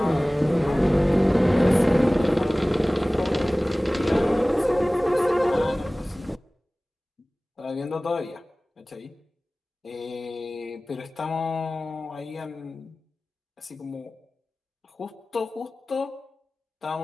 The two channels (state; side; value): normal; both; correlation 0.98